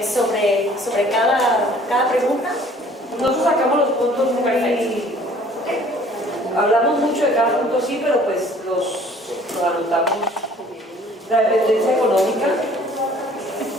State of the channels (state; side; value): normal; both; correlation 0.54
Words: sobre cada pregunta. Nosotros sacamos los puntos muy... Hablamos mucho de cada punto, sí, pero pues los anotamos. La dependencia económica,